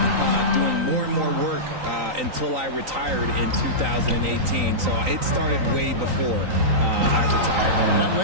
doing more and more work until I retired in 2018. So it started way before I retired. That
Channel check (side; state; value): left; late; 3.9 ms